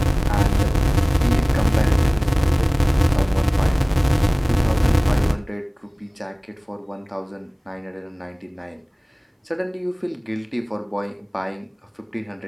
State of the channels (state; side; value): identical; both; correlation 1.00